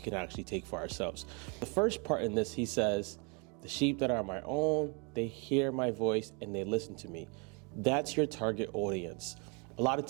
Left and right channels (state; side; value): quieter; left; 33.2 dB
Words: actually take for ourselves. The first part in this, he says, "The sheep that are my own, they hear my voice and they listen to me." That's your target audience. A lot of